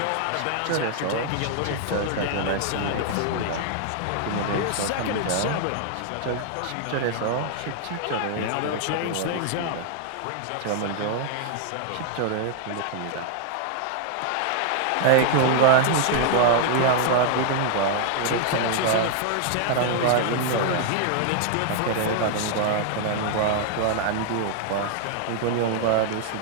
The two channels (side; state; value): both; different; correlation -0.01